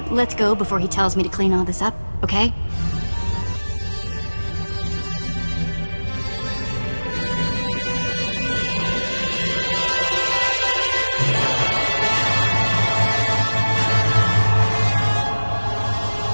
let's go before he tells me to clean all this up, okay?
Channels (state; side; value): inverted; both; correlation -1.00